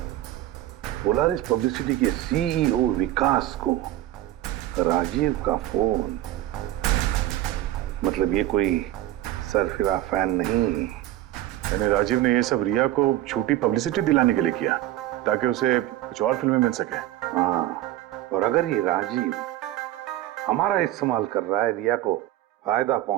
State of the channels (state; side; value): quieter; left; 14.4 dB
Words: पोलारिस पब्लिसिटी के सीईओ विकास को राजीव का फोन। मतलब ये कोई सरफिरा फैन नहीं। यानी राजीव ने ये सब रिया को झूठी पब्लिसिटी दिलाने के लिए किया ताकि उसे कुछ और फिल्में मिल सके। हाँ, और अगर ये राजीव हमारा इस्तेमाल कर रहा है रिया को फायदा